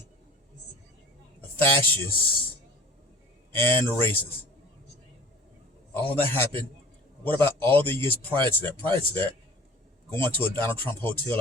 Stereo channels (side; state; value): both; normal; correlation 0.44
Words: a fascist, and a racist. All that happened. What about all the years prior to that? Prior to that, going to a Donald Trump hotel